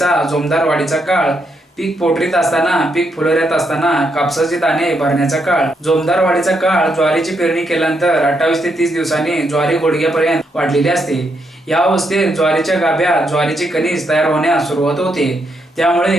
जोमदार वाढीचा काळ, पीक पोटरीत असताना, पीक फुलोऱ्यात असताना, कापसाचे दाणे भरण्याचा काळ. जोमदार वाढीचा काळ ज्वारीची पेरणी केल्यानंतर 28 ते 30 दिवसांनी ज्वारी गुडघ्यापर्यंत वाढलेली असते. या अवस्थेत ज्वारीच्या गाभ्यात ज्वारीची कणीस तयार होण्यास सुरुवात होते.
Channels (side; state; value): both; normal; correlation 0.79